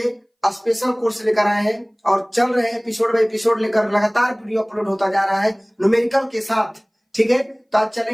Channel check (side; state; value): both; identical; correlation 1.00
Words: स्पेशल कोर्स लेकर आए हैं और चल रहे हैं एपिसोड बाय एपिसोड लेकर, लगातार वीडियो अपलोड होता जा रहा है न्यूमेरिकल के साथ। ठीक है, तो आज